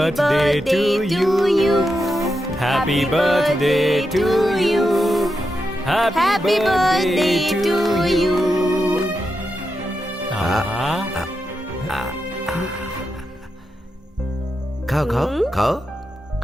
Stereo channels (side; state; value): both; normal; correlation 0.87